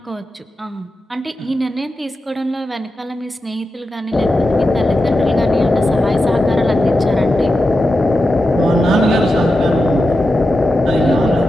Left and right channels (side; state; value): both; normal; correlation 0.90